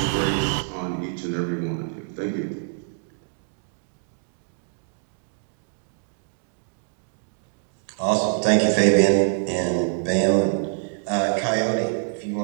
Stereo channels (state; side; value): silent; left; digital silence